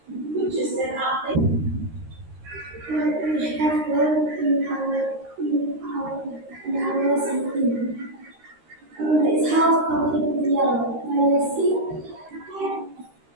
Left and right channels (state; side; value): late; left; 13 ms